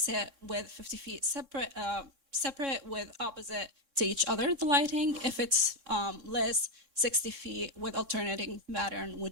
it with 50 feet separate with opposite to each other, the lighting. If it's less, 60 feet with alternating pattern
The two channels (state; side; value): late; left; 3.7 ms